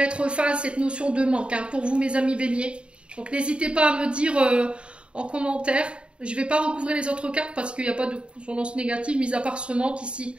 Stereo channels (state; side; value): late; left; 0.056 ms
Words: fin à cette notion de manque, hein, pour vous, mes amis béliers. Donc, n'hésitez pas à me dire en commentaire. Je ne vais pas recouvrir les autres cartes parce qu'il n'y a pas de consonance négative, mis à part ce manque ici.